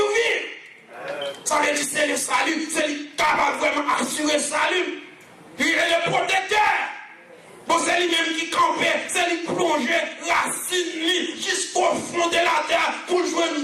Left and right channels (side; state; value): both; identical; correlation 1.00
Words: Ça veut dire c'est le salut, c'est lui capable vraiment assurer le salut. Il est le protecteur. Bon, c'est lui-même qui campait, c'est lui plonger racine jusqu'au fond de la terre pour jouer